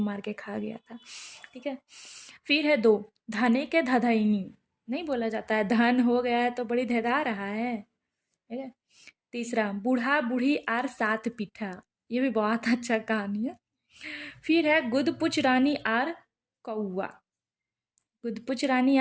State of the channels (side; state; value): both; identical; correlation 1.00